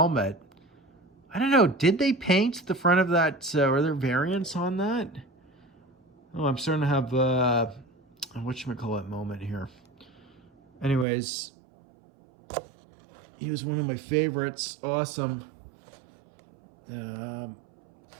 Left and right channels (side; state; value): left; drops out; at 11.1 s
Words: I don't know, did they paint the front of that? Are there variants on that? Oh, I'm starting to have a whatchamacallit moment here. Anyways, he was one of my favorites. Awesome.